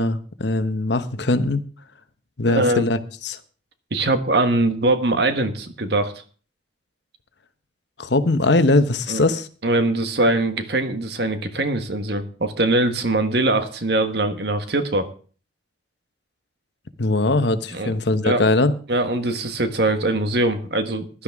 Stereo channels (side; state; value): both; normal; correlation 0.23